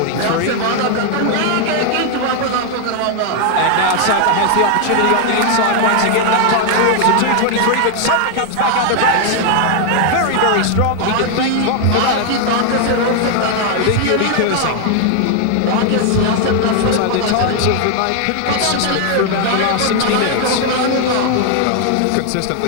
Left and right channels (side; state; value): both; different; correlation 0.00